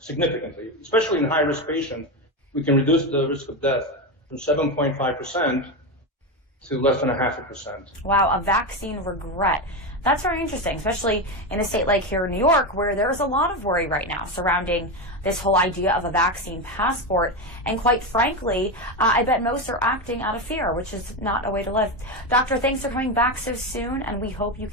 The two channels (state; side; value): normal; both; correlation 0.14